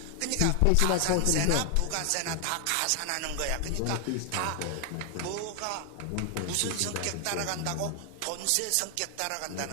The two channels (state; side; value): different; both; correlation 0.00